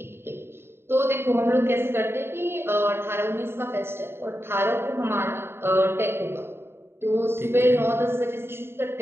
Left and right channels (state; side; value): late; left; 0.11 ms